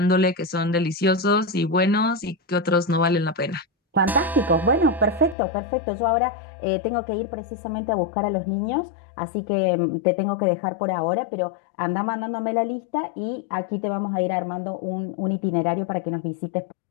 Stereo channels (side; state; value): right; drops out; at 5.4 s